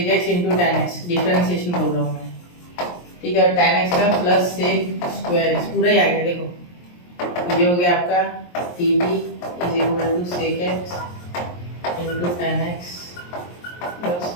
x into tan x, differentiation बोल रहा हूँ मैं, ठीक है, और tan x का प्लस sec स्क्वायर x, पूरा ही आ गया। देखो ये हो गया आपका dt is equal to sec x into tan x plus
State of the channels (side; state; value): right; late; 23 ms